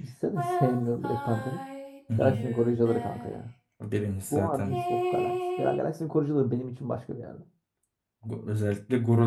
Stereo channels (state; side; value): identical; both; correlation 1.00